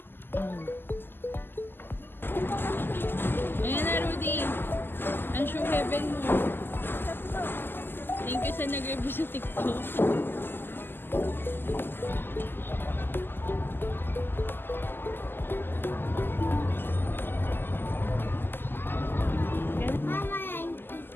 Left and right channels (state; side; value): late; right; 0.098 ms